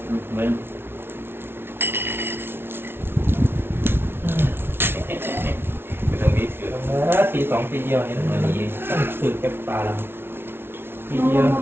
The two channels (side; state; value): left; late; 0.11 ms